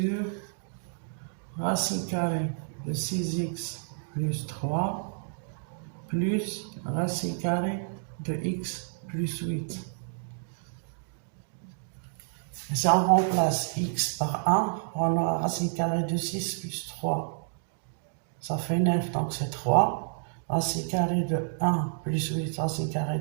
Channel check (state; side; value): silent; left; digital silence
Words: racine carrée de 6x plus 3 plus racine carrée de x plus 8. Si on remplace x par 1, on aura racine carrée de 6 plus 3. Ça fait 9, donc c'est 3. Racine carrée de 1 plus 8, racine carrée